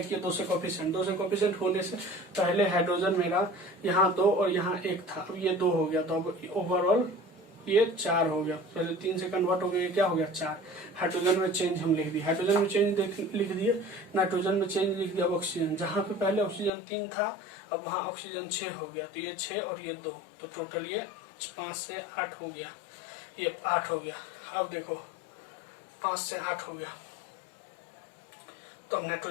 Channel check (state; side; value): drops out; right; at 16.7 s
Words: किया 2 से कोफिशिएंट, 2 से कोफिशिएंट होने से पहले हाइड्रोजन मेरा यहाँ 2 और यहाँ 1 था, अब ये 2 हो गया, तो अब ओवरऑल ये 4 हो गया, पहले 3 से कन्वर्ट हो गया, क्या हो गया 4। हाइड्रोजन में चेंज हम लिख दिए, हाइड्रोजन में चेंज लिख दिए, नाइट्रोजन में चेंज लिख दिया, ऑक्सीजन जहाँ पे पहले ऑक्सीजन 3 था अब वहाँ ऑक्सीजन 6 हो गया, तो ये 6 और ये 2, तो टोटल ये 5 से 8 हो गया, ये 8 हो गया। अब देखो 5 से 8 हो गया, तो अब